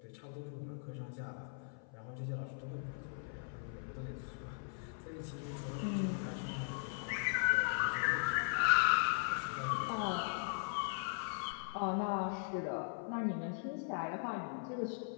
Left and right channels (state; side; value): silent; right; 52 dB below the other